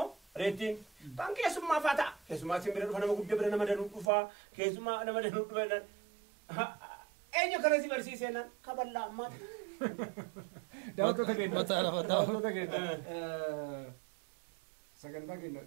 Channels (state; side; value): drops out; left; at 4.1 s